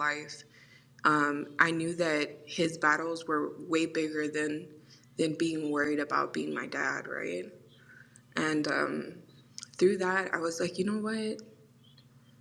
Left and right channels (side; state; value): both; identical; correlation 1.00